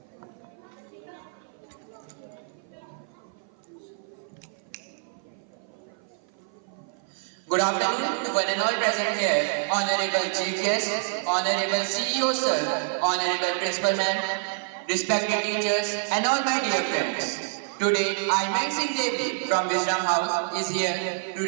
afternoon to one and all present here, Honorable Chief Guest, Honorable CEO Sir, Honorable Principal Ma'am, respected teachers and all my dear friends. Today, I, Mang Singh Devi from Wisdom House is here to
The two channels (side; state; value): left; silent; 55 dB below the other